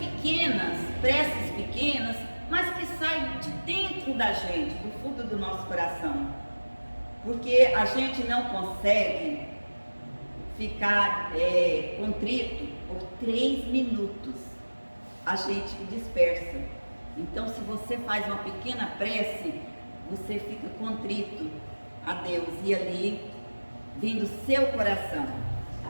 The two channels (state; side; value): inverted; both; correlation -1.00